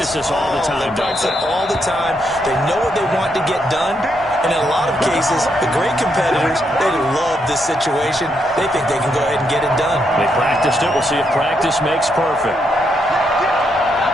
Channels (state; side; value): normal; both; correlation 0.78